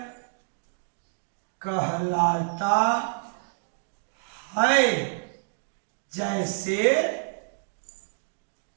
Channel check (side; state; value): left; silent; digital silence